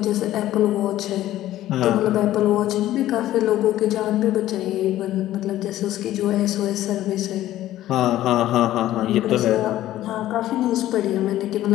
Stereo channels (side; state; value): right; quieter; 14.0 dB